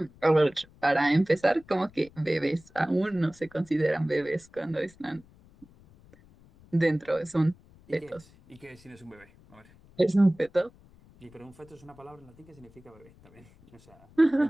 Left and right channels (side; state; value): left; noise; rumble, 26 dB below the sound